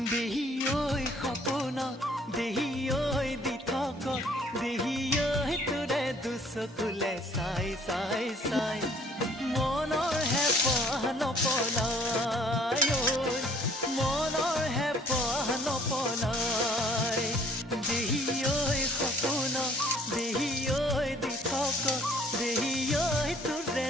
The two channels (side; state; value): both; normal; correlation 0.58